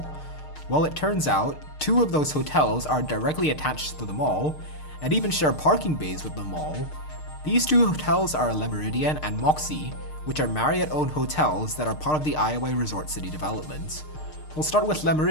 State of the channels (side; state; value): right; late; 6.6 ms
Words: Well, it turns out 2 of those hotels are directly attached to the mall, and even share parking bays with the mall. These 2 hotels are Le Meridien and Moxy, which are Marriott-owned hotels that are part of the iOi Resort City development. We'll start with Le